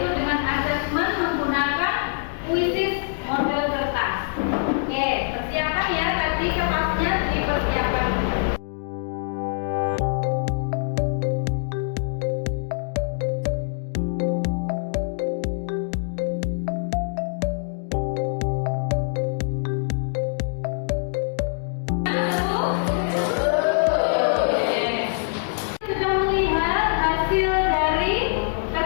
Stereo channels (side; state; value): right; silent; digital silence